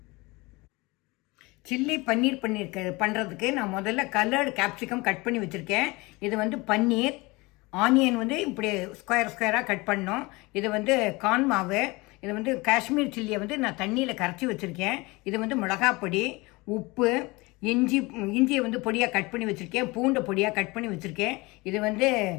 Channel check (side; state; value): right; quieter; 23.9 dB